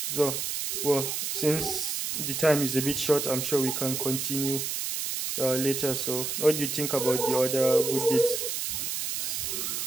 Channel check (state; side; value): noise; right; hiss, 2 dB below the sound